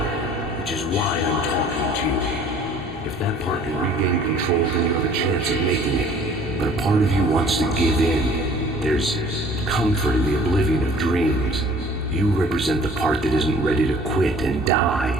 which is why I'm talking to you. If that part can regain control, then you have a chance of making it. But a part of you wants to give in. There's comfort in the oblivion of dreams. You represent the part that isn't ready to quit and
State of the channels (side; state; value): both; normal; correlation 0.51